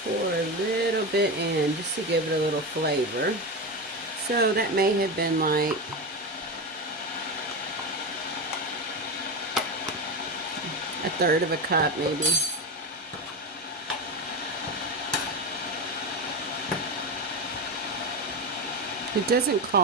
a little bit in just to give it a little flavor. So that may have been like a third of a cup maybe. It doesn't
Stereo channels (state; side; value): normal; both; correlation 0.19